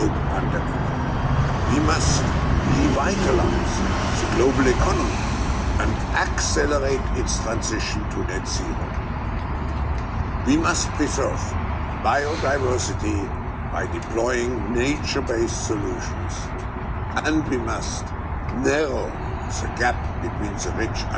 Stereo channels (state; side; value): identical; both; correlation 1.00